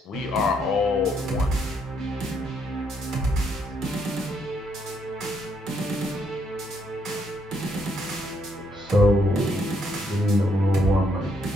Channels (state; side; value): normal; both; correlation 0.73